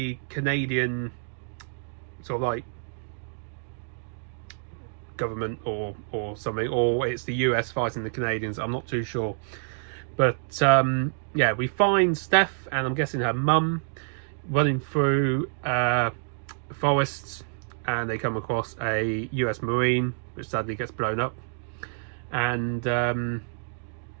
Canadian sort of like government or something, or it's the US fighting the Canadians. I'm not too sure. But yeah, we find Steph and I'm guessing her mum running through forests, and they come across a US Marine, which sadly gets blown up. And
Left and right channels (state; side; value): silent; left; digital silence